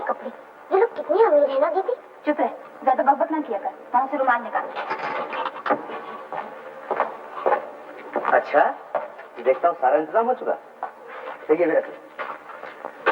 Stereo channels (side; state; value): both; identical; correlation 1.00